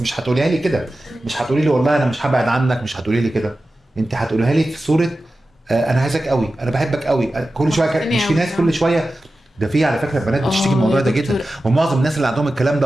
هتقوليها لي كده. مش هتقولي لي والله انا مش هبعد عنك، مش هتقولي لي كده. انت هتقوليها لي في صوره انا عايزك قوي، انا بحبك قوي كل شويه. مش في ناس كل شويه ده، في على فكره بنات بتشتكي من الموضوع ده جدا، ومعظم الناس اللي عندهم الكلام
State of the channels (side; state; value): both; normal; correlation 0.94